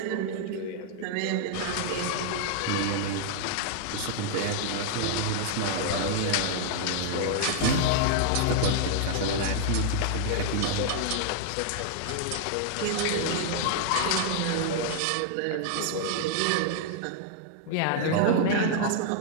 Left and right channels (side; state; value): both; different; correlation -0.01